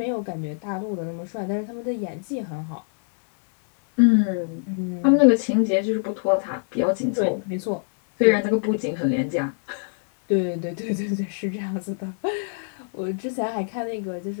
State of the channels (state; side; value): silent; right; 62 dB below the other